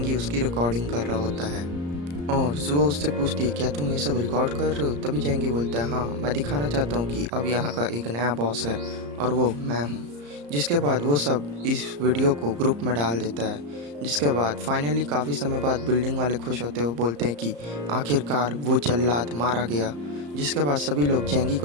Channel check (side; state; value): left; late; 34 ms